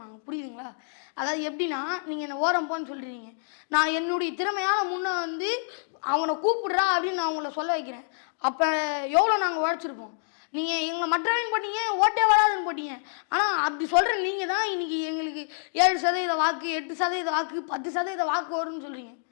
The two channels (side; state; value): right; silent; digital silence